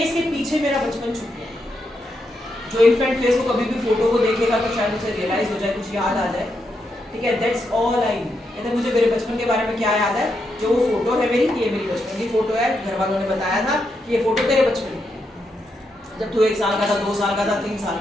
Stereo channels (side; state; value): both; normal; correlation 0.82